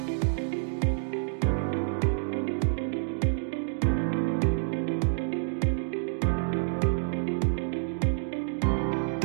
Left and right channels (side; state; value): left; silent; digital silence